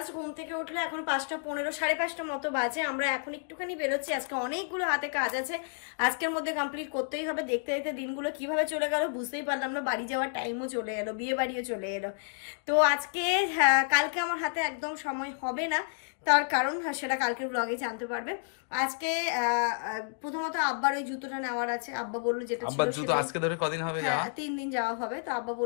ঘুম থেকে উঠলে এখন 5:15, 5:30 মতো বাজে। আমরা এখন একটুখানি বেরোচ্ছি, আজকে অনেকগুলো হাতে কাজ আছে, আজকের মধ্যে কমপ্লিট করতেই হবে। দেখতে দেখতে দিনগুলো কিভাবে চলে গেল বুঝতেই পারলাম না, বাড়ি যাওয়ার টাইমও চলে এলো, বিয়ে বাড়িও চলে এলো। তো আজকে কালকে আমার হাতে একদম সময় হবে না, তার কারণ সেটা কালকের ব্লগে জানতে পারবে। আজকে প্রথমত আব্বার ওই জুতোটা নেওয়ার আছে, আব্বা বললো যেটা আব্বার জুতো আজকে ধরে কদিন হবে যাওয়া? 3 দিন যাওয়া হবে, তো আব্বা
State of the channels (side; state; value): right; silent; digital silence